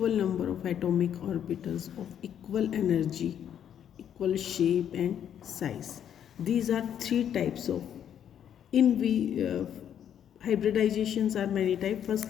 number of atomic orbitals of equal energy, equal shape and size. These are three types of in we hybridizations are many types.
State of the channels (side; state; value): right; quieter; 9.4 dB